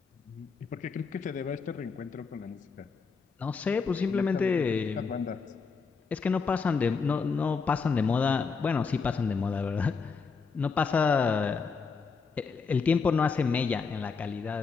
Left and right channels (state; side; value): quieter; right; 5.1 dB